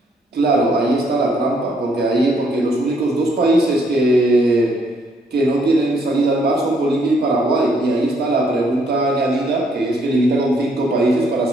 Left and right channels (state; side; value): normal; both; correlation 0.69